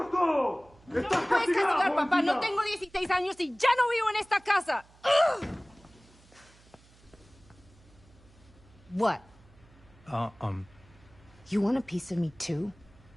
es todo! No me puedes castigar, papá. No tengo 16 años y ya no vivo en esta casa. Ugh. What? You want a piece of me too?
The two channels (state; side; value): noise; right; hum, 27 dB below the sound